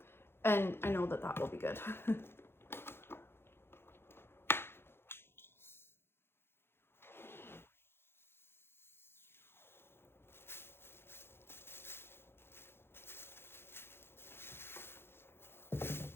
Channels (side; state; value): right; late; 0.11 ms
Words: And I know that that will be good.